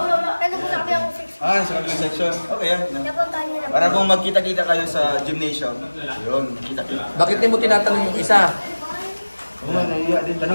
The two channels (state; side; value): inverted; both; correlation -1.00